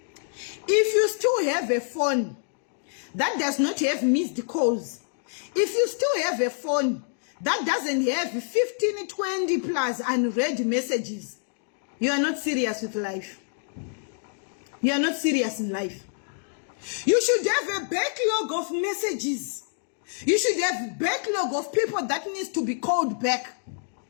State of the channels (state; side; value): silent; right; digital silence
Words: if you still have a phone that does not have missed calls, if you still have a phone that doesn't have 15, 20 plus unread messages, you are not serious with life. You are not serious in life. You should have a backlog of messages. You should have a backlog of people that needs to be called back